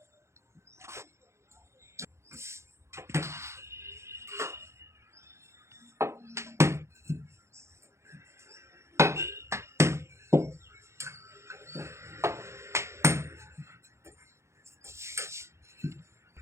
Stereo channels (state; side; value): late; left; 0.13 ms